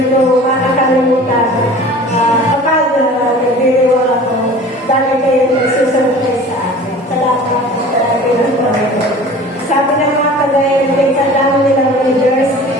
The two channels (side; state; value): both; normal; correlation 0.42